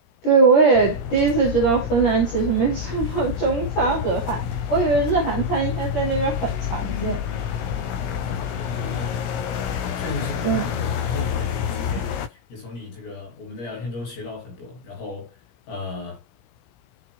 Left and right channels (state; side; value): late; right; 17 ms